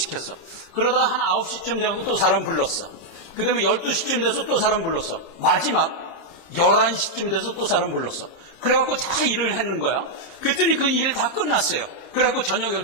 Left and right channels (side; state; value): right; late; 29 ms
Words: 그러다가 한 9시쯤 돼갖고 또 사람 불렀어. 그 다음에 12시쯤 돼서 또 사람 불렀어. 마지막 11시쯤 돼서 또 사람 불렀어. 그래갖고 다 일을 했는 거야. 그랬더니 그 일 다 끝났어요. 그래갖고 저녁